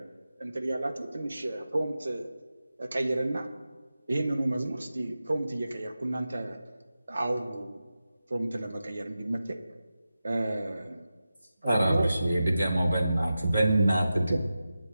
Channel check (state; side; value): inverted; both; correlation -0.92